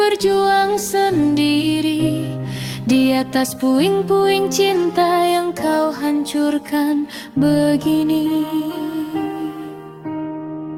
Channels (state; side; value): identical; both; correlation 1.00